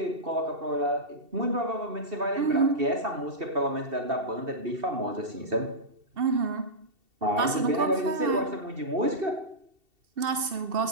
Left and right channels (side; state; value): left; late; 2.7 ms